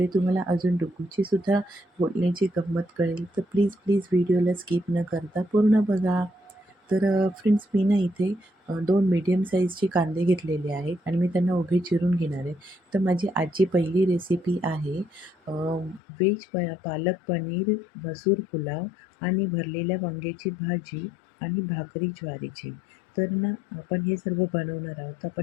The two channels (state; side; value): drops out; right; at 16.0 s